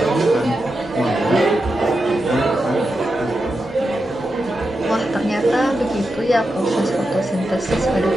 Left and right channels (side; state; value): both; normal; correlation 0.88